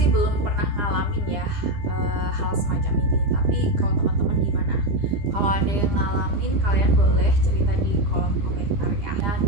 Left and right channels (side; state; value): left; late; 9.9 ms